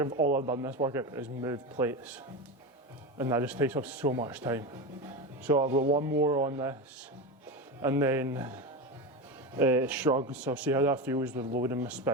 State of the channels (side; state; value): both; normal; correlation 0.20